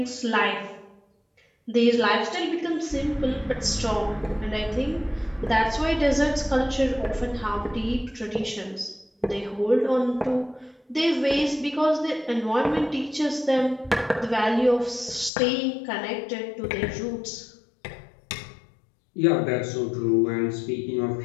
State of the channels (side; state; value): right; drops out; at 15.3 s